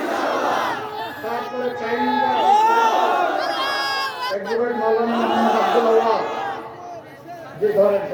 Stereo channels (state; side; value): identical; both; correlation 1.00